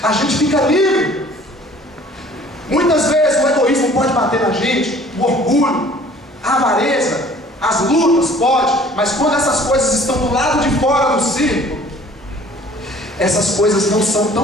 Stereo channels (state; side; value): normal; both; correlation 0.52